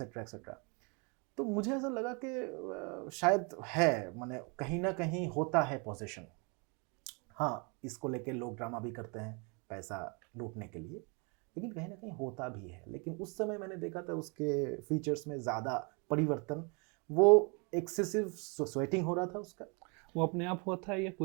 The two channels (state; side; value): quieter; left; 32.9 dB